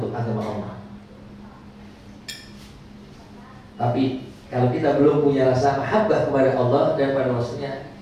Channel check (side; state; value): both; identical; correlation 1.00